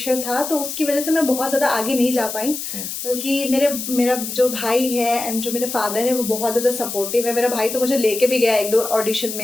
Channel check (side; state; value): left; noise; hiss, 6 dB below the sound